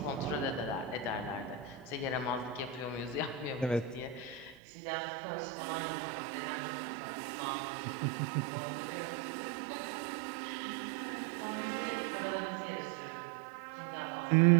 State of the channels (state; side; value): drops out; left; at 4.5 s